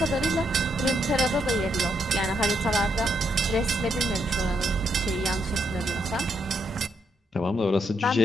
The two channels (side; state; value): both; normal; correlation 0.77